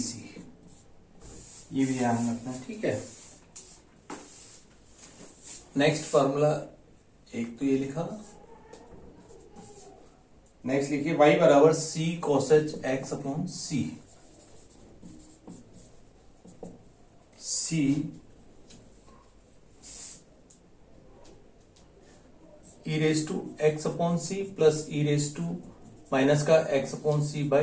ये भी ध्यान रखना, ठीक है। नेक्स्ट फॉर्मूला एक तो ये लिखा, नेक्स्ट लिखिए y बराबर c cos h x upon c. C e raise to x upon c plus e raise to minus का एक्स अपॉन सी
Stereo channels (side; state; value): both; identical; correlation 1.00